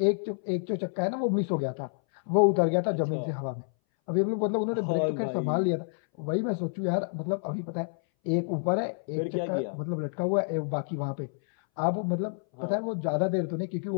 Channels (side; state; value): right; silent; 59 dB below the other